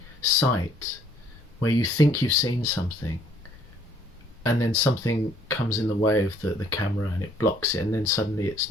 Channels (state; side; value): normal; both; correlation 0.61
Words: sight, where you think you've seen something, and then something comes in the way of the camera and it blocks it, and then suddenly it's